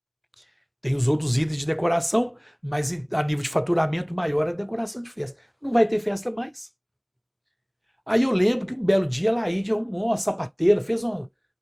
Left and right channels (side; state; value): both; identical; correlation 1.00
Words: Tem os outros itens de decoração, mas a nível de faturamento maior é a decoração de festa. Não vai ter festa mais. Aí eu lembro que um belo dia a Laíde arrumou uma sapateira,